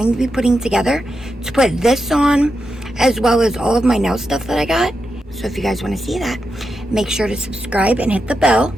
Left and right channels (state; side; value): normal; both; correlation 0.87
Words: to be putting together to put this on, as well as all of my nail stuff that I got. So if you guys want to see that, make sure to subscribe and hit the bell